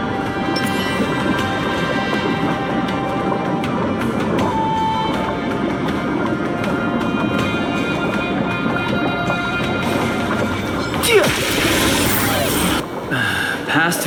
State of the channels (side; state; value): both; identical; correlation 1.00